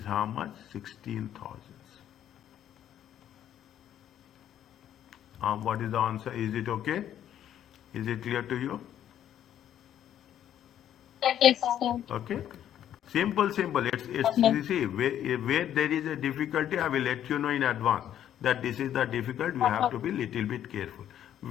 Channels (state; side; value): quieter; right; 10.8 dB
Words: how much? 16,000. What is the answer? Is it okay? Is it clear to you? Yes, sir. Okay. Simple. It's you see, where there is a difficulty, I will let you know in advance that this is the difficult. You have to be little bit careful.